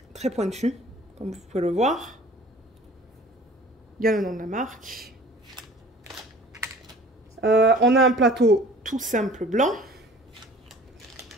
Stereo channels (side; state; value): both; normal; correlation 0.47